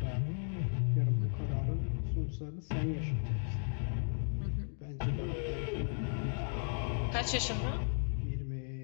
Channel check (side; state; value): right; silent; digital silence